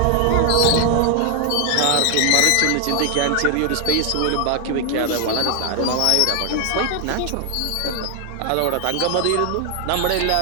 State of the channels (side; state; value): both; different; correlation 0.00